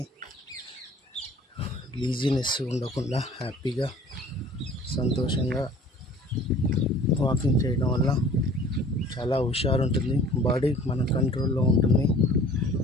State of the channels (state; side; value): normal; both; correlation 0.49